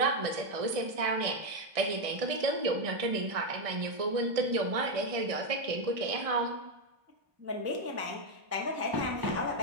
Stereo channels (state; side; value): late; left; 1.6 ms